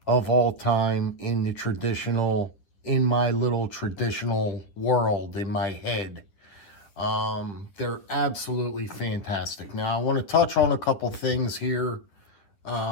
of all time in the traditional, in my little traditional world, in my head. They're absolutely fantastic. Now, I want to touch on a couple things here,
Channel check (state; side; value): late; right; 9.9 ms